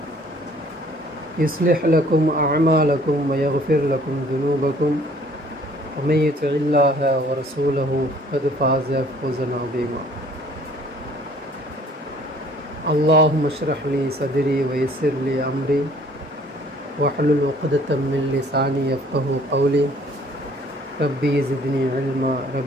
يصلح لكم أعمالكم ويغفر لكم ذنوبكم ومن يطع الله ورسوله فقد فاز فوزا عظيما. اللهم اشرح لي صدري ويسر لي أمري واحلل عقدة من لساني يفقهوا قولي. ربي زدني علما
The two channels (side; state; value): both; normal; correlation 0.56